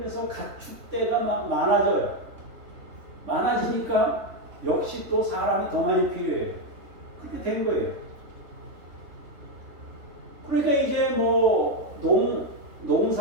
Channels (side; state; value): left; late; 3.5 ms